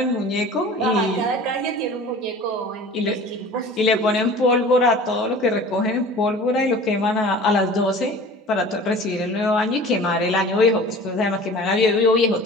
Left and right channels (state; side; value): normal; both; correlation 0.42